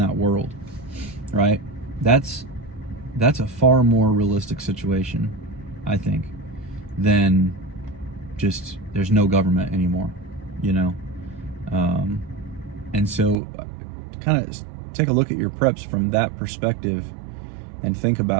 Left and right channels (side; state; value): left; drops out; at 13.4 s